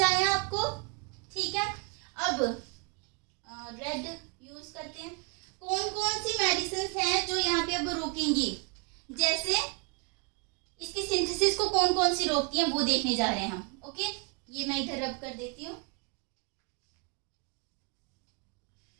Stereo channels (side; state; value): left; quieter; 33.3 dB